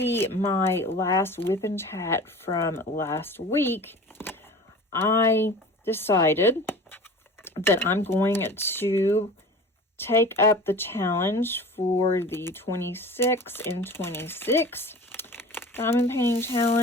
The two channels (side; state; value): both; normal; correlation 0.39